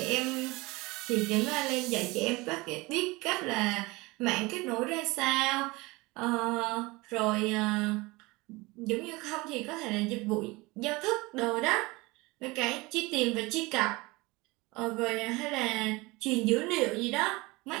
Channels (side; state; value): left; quieter; 23.2 dB